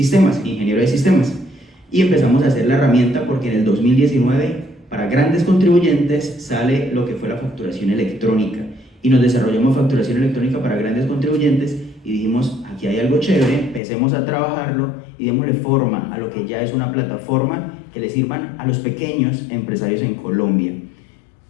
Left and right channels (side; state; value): right; drops out; at 13.8 s